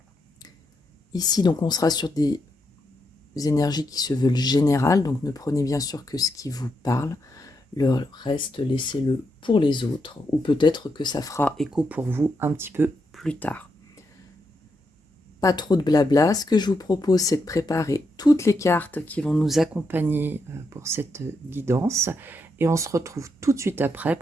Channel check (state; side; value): normal; both; correlation 0.81